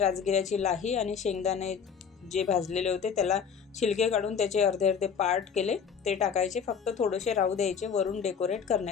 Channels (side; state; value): right; quieter; 6.8 dB